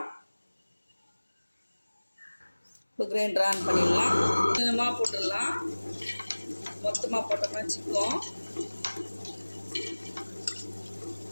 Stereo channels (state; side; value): inverted; both; correlation -1.00